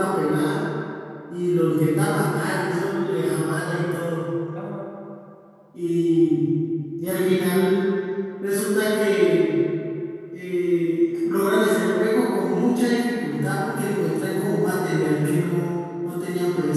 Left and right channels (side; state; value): both; identical; correlation 1.00